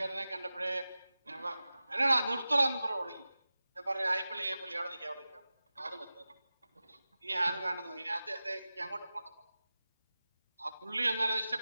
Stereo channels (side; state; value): both; inverted; correlation -0.95